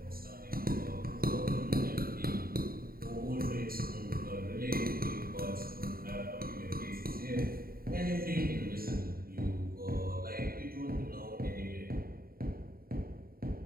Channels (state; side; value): late; left; 0.43 ms